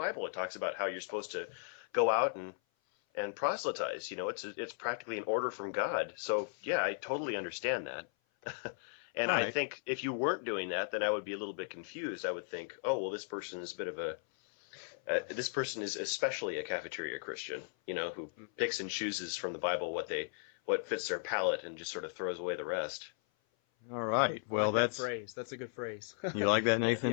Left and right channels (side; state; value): right; silent; 54 dB below the other